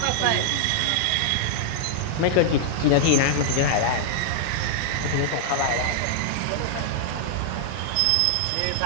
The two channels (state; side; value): different; both; correlation -0.01